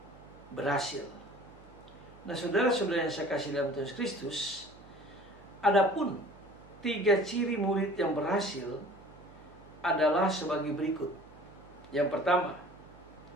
berhasil. Nah, saudara-saudara yang saya kasih dalam Tuhan Kristus, adapun 3 ciri murid yang berhasil adalah sebagai berikut. Yang pertama,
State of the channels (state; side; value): noise; right; hum, 23 dB below the sound